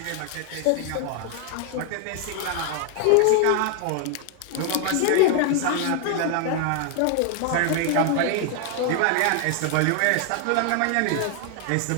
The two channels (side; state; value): both; different; correlation 0.00